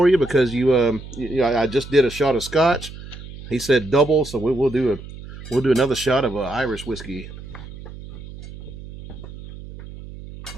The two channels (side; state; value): right; noise; hum, 14 dB below the sound